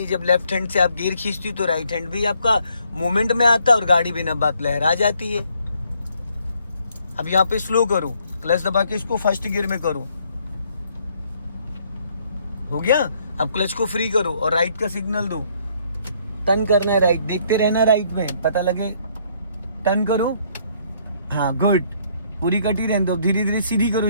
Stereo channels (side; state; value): both; inverted; correlation -0.67